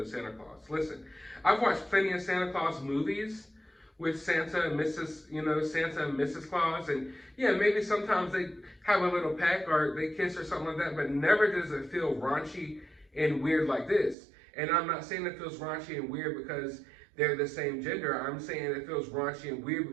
Santa Claus? Listen, I've watched plenty of Santa Claus movies with Santa and Mrs., you know, Santa and Mrs. Claus. And yeah, maybe sometimes they have a little peck or they kiss or something like that, but never does it feel raunchy and weird like this. And I'm not saying it feels raunchy and weird because they're the same gender. I'm saying it feels raunchy and weird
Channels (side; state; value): left; drops out; at 14.2 s